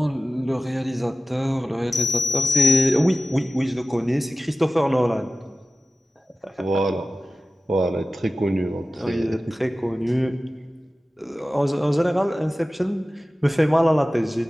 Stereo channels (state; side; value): normal; both; correlation 0.96